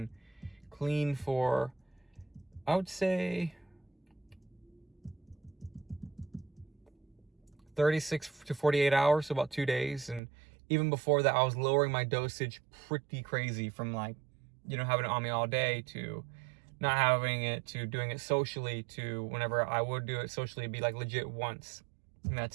clean for, I would say, 36 to 48 hours, so about 2 days. And even before that, I was lowering my dosage pretty crazy, from like, having it on me all day, to not having it, to doing it socially, to whenever I would do it socially, it'd be like legit once, and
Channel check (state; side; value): drops out; left; at 10.2 s